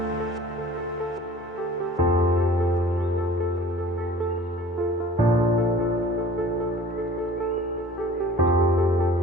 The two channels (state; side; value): normal; both; correlation 0.46